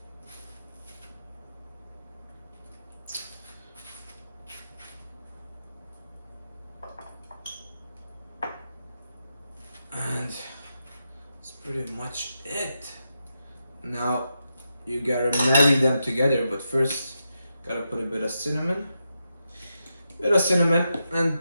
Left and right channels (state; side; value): inverted; both; correlation -0.86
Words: And that's pretty much it. Now you gotta marry them together, but first gotta put a bit of cinnamon. And